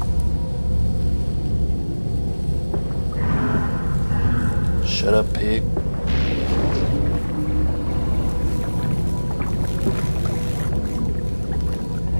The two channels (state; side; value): inverted; both; correlation -1.00